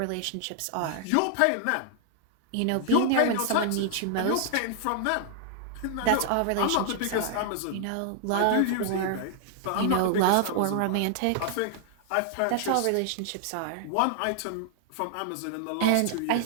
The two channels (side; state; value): both; different; correlation 0.00